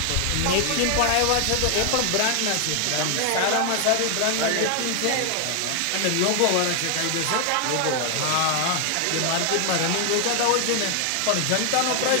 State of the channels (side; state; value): both; different; correlation 0.00